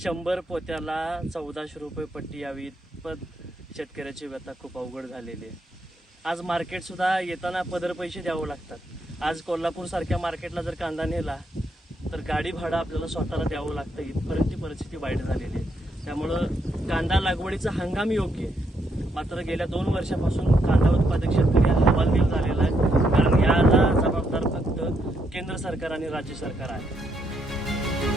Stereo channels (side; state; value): both; normal; correlation 0.77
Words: 100 पोत्याला 1400 रुपये पट्टी यावी इतपत शेतकऱ्याची व्यथा खूप अवघड झालेली आहे. आज मार्केट सुद्धा येताना पदर पैसे द्यावं लागतात. आज कोल्हापूर सारख्या मार्केटला जर कांदा नेला तर गाडी भाडं आपल्याला स्वतःला द्यावं लागतं. इथपर्यंत परिस्थिती वाईट झालेली आहे. त्यामुळं कांदा लागवडीचा हंगाम योग्य आहे, मात्र गेल्या 2 वर्षापासून कांदा उत्पादक शेतकरी हवालदिल झालेला आहे, कारण याला जबाबदार फक्त केंद्र सरकार आणि राज्य सरकार आहे.